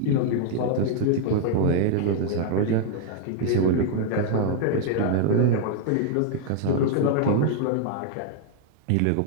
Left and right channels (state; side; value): different; both; correlation 0.00